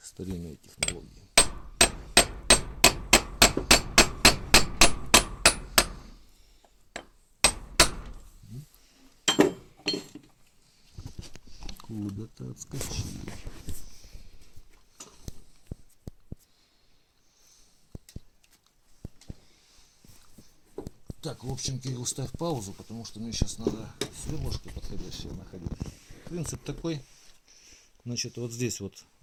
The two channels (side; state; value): both; identical; correlation 1.00